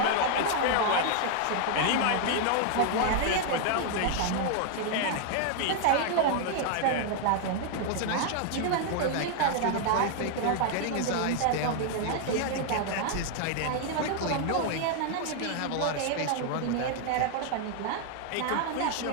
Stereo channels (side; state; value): both; different; correlation 0.00